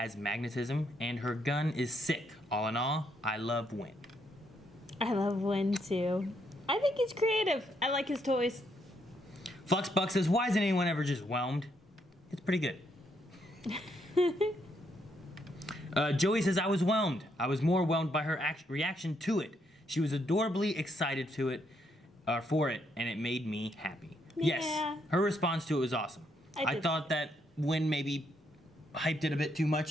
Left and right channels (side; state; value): both; normal; correlation 0.75